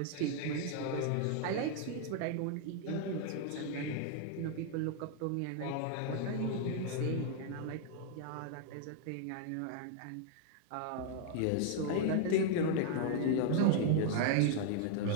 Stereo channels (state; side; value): different; both; correlation 0.00